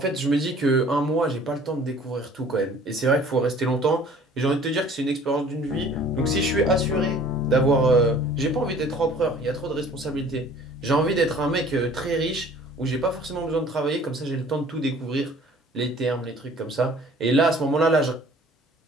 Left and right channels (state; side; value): normal; both; correlation 0.51